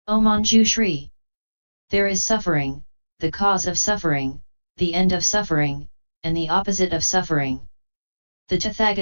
O Manjushri! There is suffering, the cause of suffering, the end of suffering, and the opposite of suffering. The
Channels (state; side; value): inverted; both; correlation -1.00